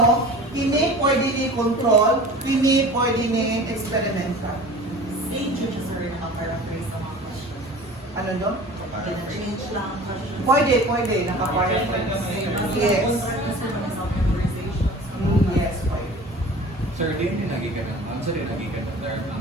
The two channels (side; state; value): both; normal; correlation 0.41